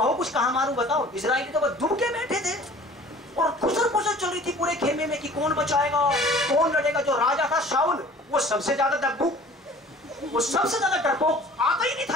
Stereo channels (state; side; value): normal; both; correlation 0.48